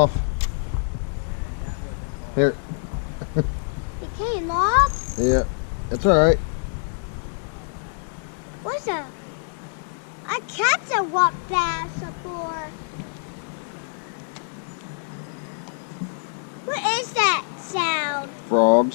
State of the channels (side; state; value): right; silent; digital silence